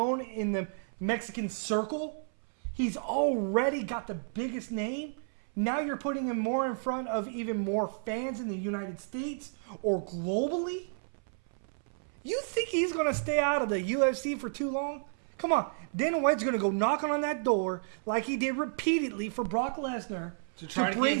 in the Mexican circle. He's already got the biggest name. Now you're putting him more in front of even more fans in the United States or globally? You think he's going to stay out of the UFC for too long? Come on. Dana White's going to go knocking on that door like he did repeatedly for Brock Lesnar to bring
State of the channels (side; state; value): left; silent; 57 dB below the other